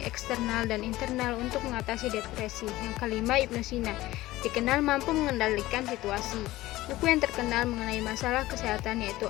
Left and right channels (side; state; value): right; quieter; 17.2 dB